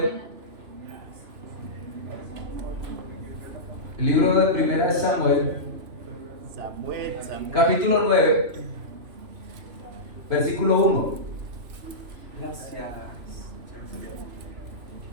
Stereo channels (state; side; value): late; left; 3.0 ms